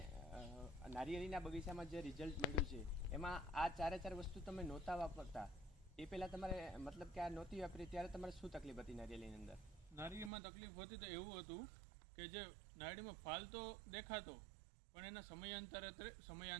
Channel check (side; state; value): left; drops out; at 10.3 s